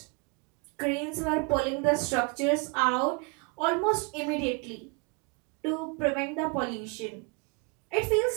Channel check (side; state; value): left; quieter; 31.8 dB